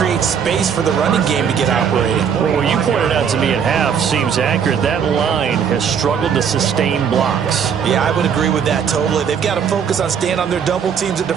space for the running game to get operating. Well, what you pointed out to me at half seems accurate. That line has struggled to sustain blocks. Yeah, I would agree with that totally. They've got to focus on staying on their double teams at the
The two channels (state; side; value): quieter; left; 7.4 dB